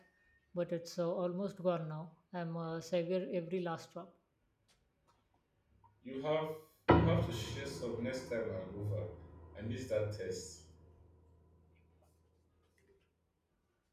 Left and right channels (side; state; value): both; identical; correlation 1.00